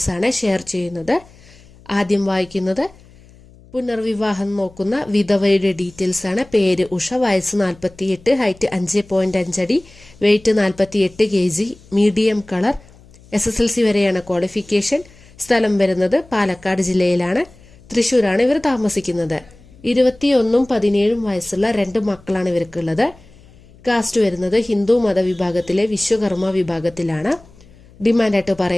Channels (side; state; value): left; noise; hum, 25 dB below the sound